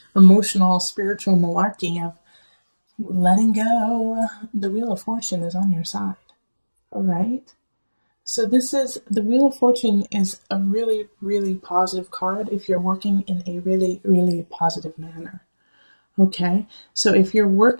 emotional, spiritual malarkey of letting go, the Wheel of Fortune is on your side. All right. So the Wheel of Fortune is a really, really positive card if you're working in a really, really positive manner. Okay, so if you're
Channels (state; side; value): inverted; both; correlation -1.00